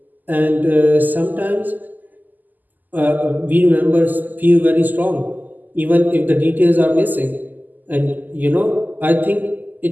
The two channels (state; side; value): late; left; 0.084 ms